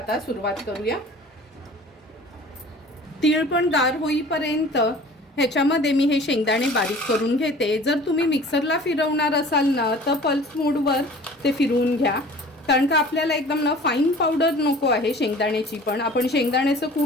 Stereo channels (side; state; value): both; normal; correlation 0.45